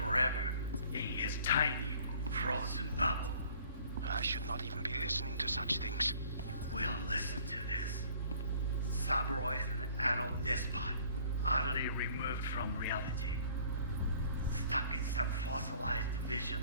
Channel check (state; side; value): inverted; both; correlation -0.55